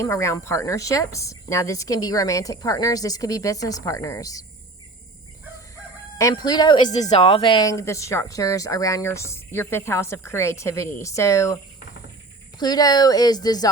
around partnerships. Now, this can be romantic partners. This could be business partners. And Pluto is dissolving the structures around your fifth house of creativity. So Pluto is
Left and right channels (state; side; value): quieter; left; 3.1 dB